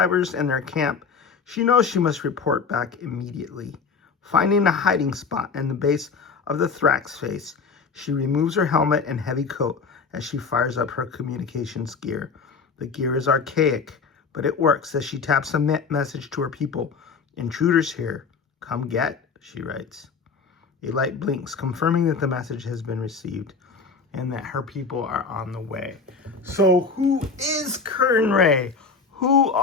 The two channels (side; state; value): right; quieter; 5.1 dB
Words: and their camp, she knows she must report back immediately. Finding a hiding spot in the base of the Thrax face, she removes her helmet and heavy coat as she fires up her communications gear. The gear is archaic, but it works as she taps a message to her people. Intruders here. Come get, she writes. A light blinks, confirming that the message has been received and that her people are on the way. So who is Kurnn Ray? Who